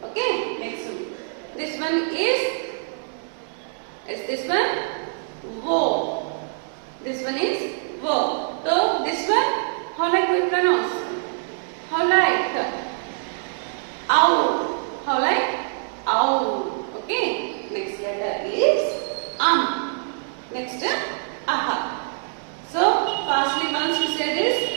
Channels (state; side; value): silent; left; digital silence